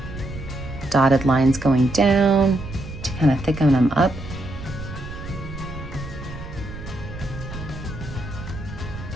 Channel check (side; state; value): right; noise; rumble, 11 dB below the sound